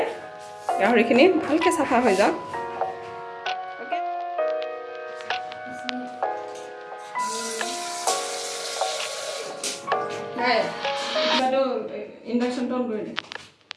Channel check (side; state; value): both; identical; correlation 1.00